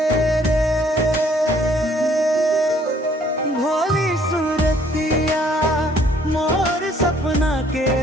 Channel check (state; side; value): normal; both; correlation 0.61